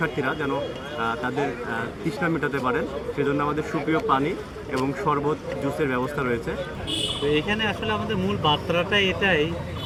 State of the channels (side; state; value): both; identical; correlation 1.00